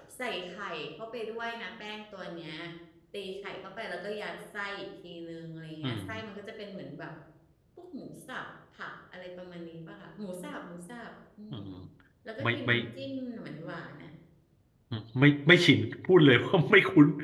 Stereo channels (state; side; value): identical; both; correlation 1.00